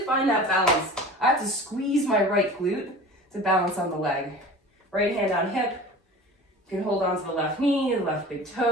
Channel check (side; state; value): both; normal; correlation 0.38